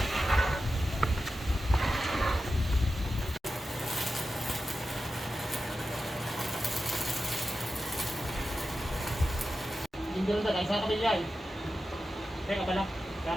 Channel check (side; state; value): both; normal; correlation 0.92